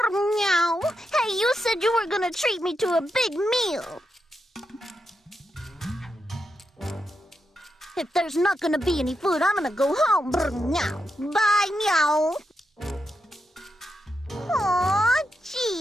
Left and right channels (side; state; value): both; normal; correlation 0.85